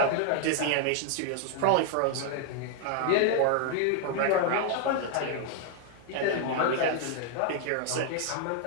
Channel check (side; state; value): both; different; correlation 0.00